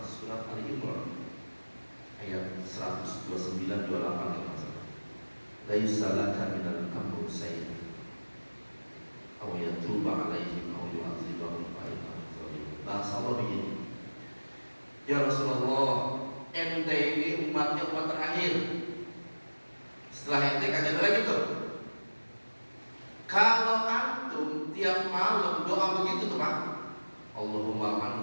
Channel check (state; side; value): inverted; both; correlation -1.00